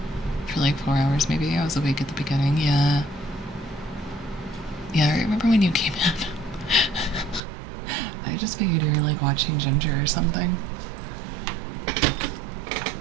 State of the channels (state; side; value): drops out; left; at 7.4 s